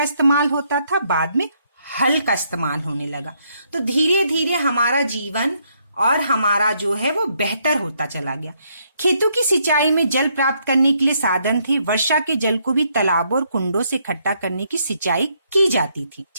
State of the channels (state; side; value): inverted; both; correlation -0.73